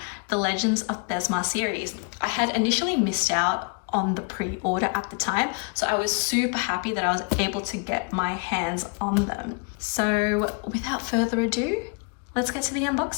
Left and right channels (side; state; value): right; quieter; 35.6 dB